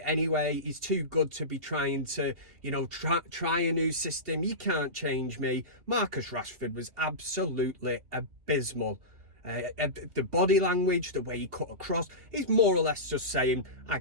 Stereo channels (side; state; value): left; late; 2.7 ms